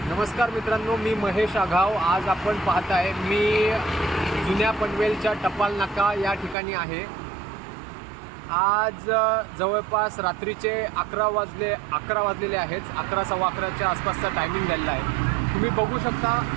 नमस्कार मित्रांनो, मी महेश आघाव. आज आपण पाहत आहे मी जुन्या पनवेलच्या टपाल नाका या ठिकाणी आहे. आज जवळपास रात्रीचे 11 वाजलेले आहेत. 11:15च्या आसपासचा टायमिंग झालेला आहे. तुम्ही बघू शकता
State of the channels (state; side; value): drops out; left; at 6.6 s